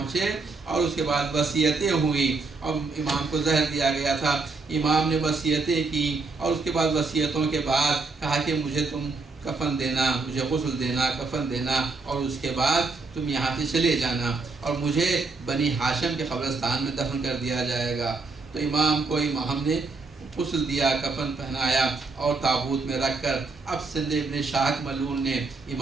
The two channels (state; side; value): quieter; left; 3.9 dB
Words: اور اس کے بعد وصیتیں ہوئیں، اور امام کو زہر دیا گیا تھا۔ امام نے وصیتیں کی، اور اس کے بعد وصیتوں کے بعد کہا کہ مجھے تم کفن دینا، مجھے غسل دینا، کفن دینا، اور اس کے بعد تم یہاں سے چلے جانا اور مجھے بنی ہاشم کے قبرستان میں دفن کر دیا جائے گا۔ تو امام کو ہم نے غسل دیا، کفن پہنایا اور تابوت میں رکھ کر اب سندھ ابن شاہق ملعون نے